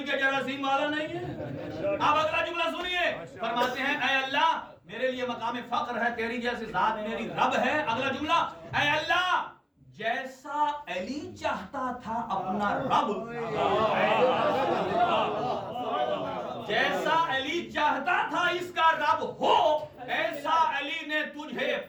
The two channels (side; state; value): both; identical; correlation 1.00